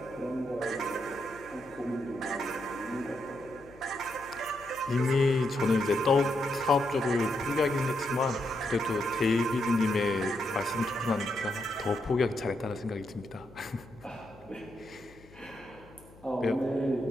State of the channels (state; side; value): noise; left; hum, 23 dB below the sound